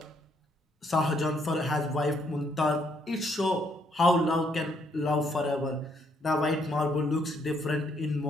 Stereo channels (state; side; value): normal; both; correlation 0.71